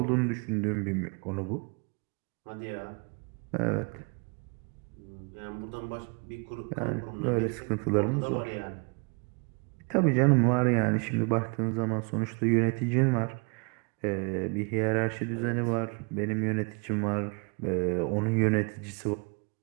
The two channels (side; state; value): left; quieter; 34.0 dB